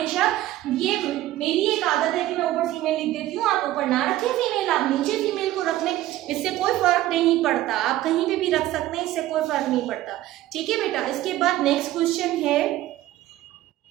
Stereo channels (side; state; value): left; quieter; 15.1 dB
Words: ये मेरी एक आदत है कि मैं ऊपर फीमेल लिख देती हूँ, आप ऊपर ना रखें फीमेल, आप नीचे फीमेल को रख लें, इससे कोई फर्क नहीं पड़ता, आप कहीं पे भी रख सकते हैं, इससे कोई फर्क नहीं पड़ता, ठीक है बेटा। इसके बाद नेक्स्ट क्वेश्चन है,